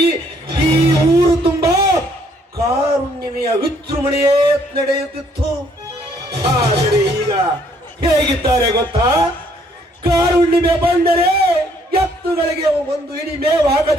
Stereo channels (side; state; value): both; normal; correlation 0.66